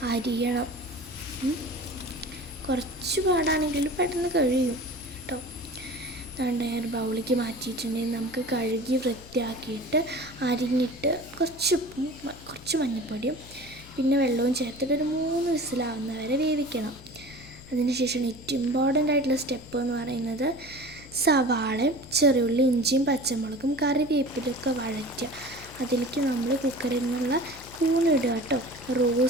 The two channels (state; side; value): noise; left; hum, 19 dB below the sound